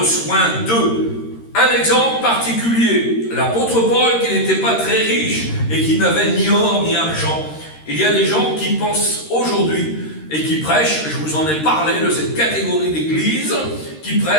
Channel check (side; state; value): right; late; 13 ms